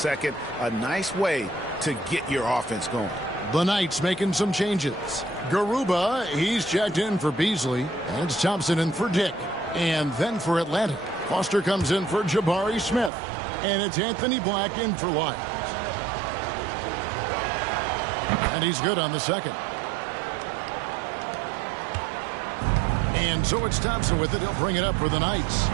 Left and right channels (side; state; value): left; drops out; at 13.1 s